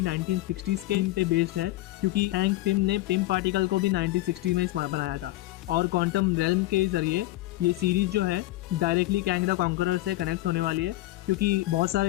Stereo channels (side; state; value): right; quieter; 17.7 dB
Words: 1960s के थीम पे बेस्ड है, क्योंकि हैंक पिम ने पिम पार्टिकल को भी 1960 में बनाया था। और क्वांटम रेल्म के जरिए ये सीरीज जो है डायरेक्टली कैंग द कॉन्करर से कनेक्ट होने वाली है, क्योंकि बहुत